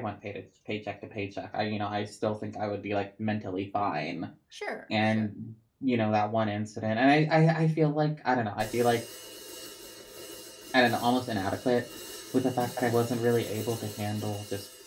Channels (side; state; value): both; identical; correlation 1.00